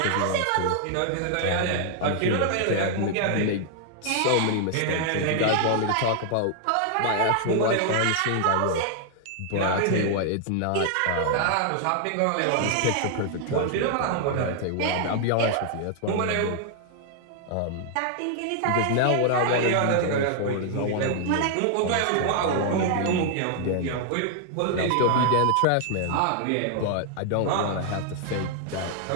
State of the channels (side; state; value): both; different; correlation 0.00